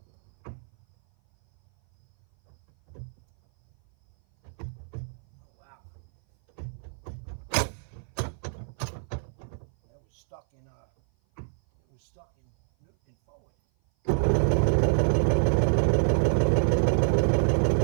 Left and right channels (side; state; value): left; silent; 57 dB below the other